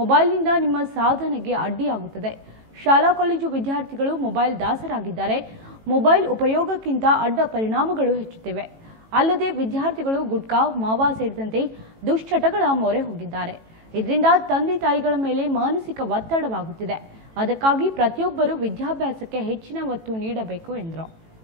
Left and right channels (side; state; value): left; late; 18 ms